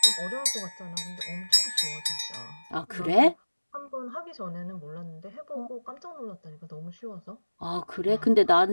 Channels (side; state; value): both; inverted; correlation -1.00